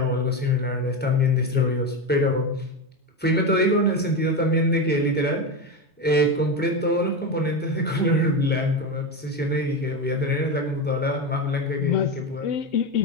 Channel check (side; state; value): both; normal; correlation 0.16